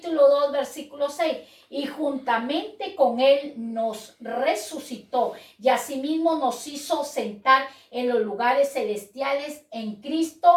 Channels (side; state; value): both; identical; correlation 1.00